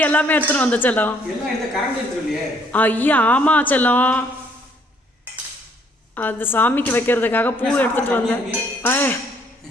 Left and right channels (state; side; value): normal; both; correlation 0.65